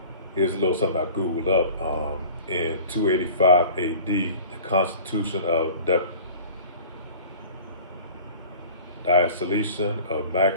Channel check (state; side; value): inverted; both; correlation -0.43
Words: Here's a little something I Googled up. In 285 AD, the Constitution of Diocletian of